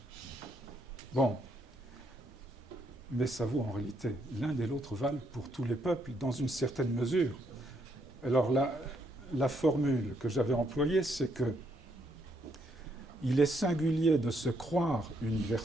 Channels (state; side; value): normal; both; correlation 0.74